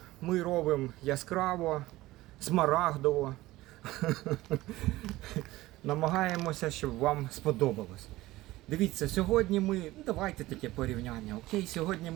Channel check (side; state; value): left; quieter; 17.7 dB